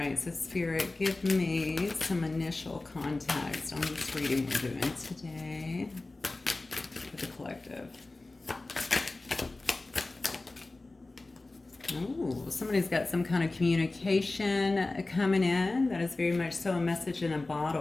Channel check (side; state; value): right; quieter; 3.1 dB